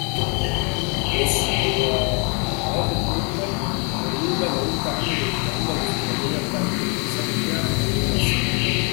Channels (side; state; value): right; quieter; 34.8 dB